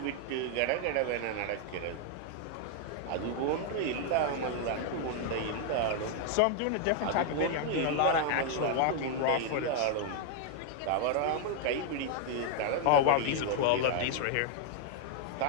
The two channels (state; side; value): different; both; correlation 0.00